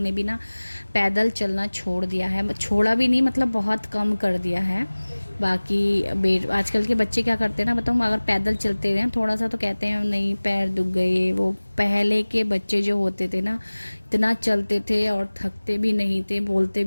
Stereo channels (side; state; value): both; inverted; correlation -1.00